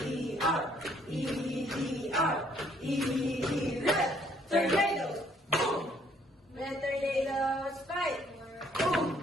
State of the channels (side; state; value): both; normal; correlation 0.65